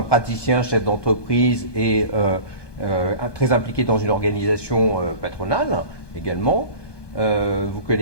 praticien, chef d'entreprise et très impliqué dans une organisation patronale également. Vous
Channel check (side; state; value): right; late; 1.2 ms